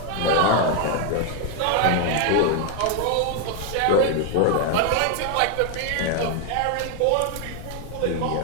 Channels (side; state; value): both; different; correlation 0.01